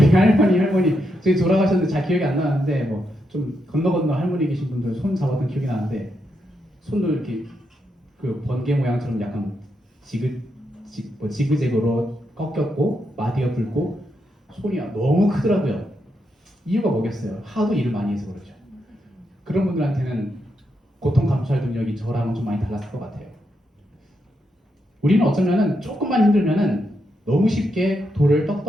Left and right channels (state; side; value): normal; both; correlation 0.82